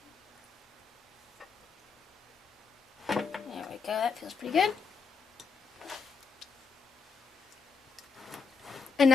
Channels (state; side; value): quieter; right; 5.3 dB